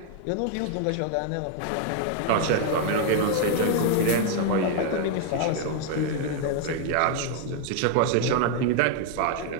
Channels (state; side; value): different; both; correlation 0.00